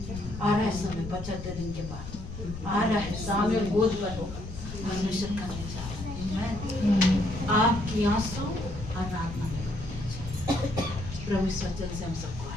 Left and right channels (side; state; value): left; noise; rumble, 9 dB below the sound